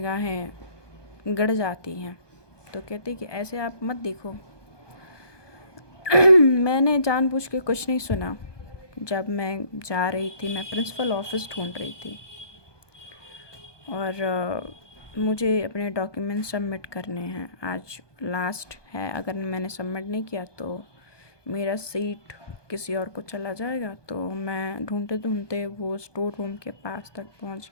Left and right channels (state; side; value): late; right; 1.2 ms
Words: गड़ जाती हैं। तो कहती कि ऐसे आप मत देखो। मैंने जानबूझ के कुछ नहीं सुना। जब मैं जा रही थी, मैं प्रिंसिपल ऑफिस ढूंढ रही थी और मुझे अपने डॉक्यूमेंट सबमिट करने हैं। आज लास्ट है, अगर मैंने सबमिट नहीं किया तो मेरा सीट किसी और को चला जाएगा। तो मैं ढूंढते ढूंढते वो स्टोर रूम के पास तक पहुंच